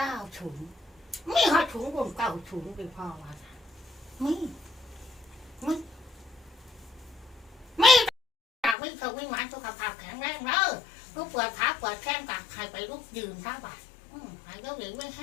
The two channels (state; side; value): drops out; right; at 8.8 s